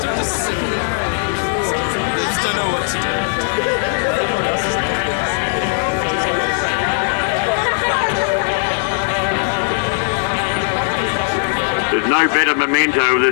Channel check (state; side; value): silent; right; digital silence